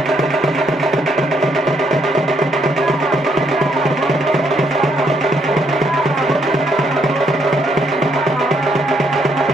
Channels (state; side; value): normal; both; correlation 0.72